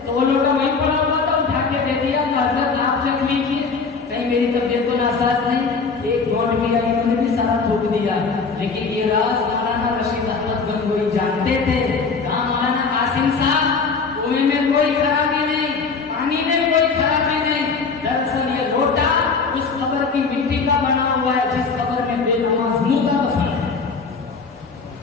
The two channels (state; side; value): quieter; right; 4.8 dB